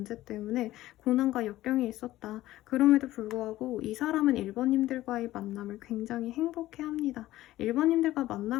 때문에 고난과 역경이 있었다. 그럼에도 불구하고 이 사람은 일본님들과의 만남을 굉장히 행복해합니다. 일본님들과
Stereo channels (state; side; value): quieter; right; 15.5 dB